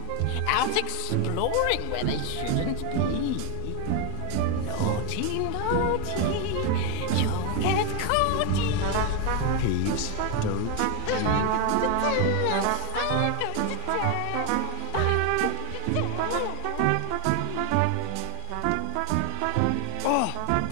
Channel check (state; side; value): different; both; correlation 0.01